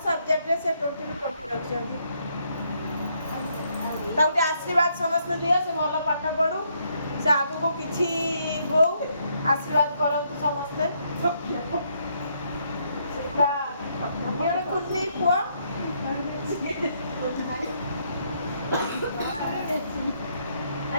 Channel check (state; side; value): inverted; both; correlation -0.73